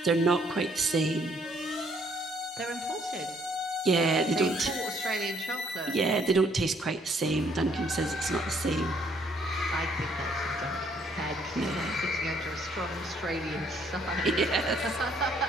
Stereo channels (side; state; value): both; normal; correlation 0.66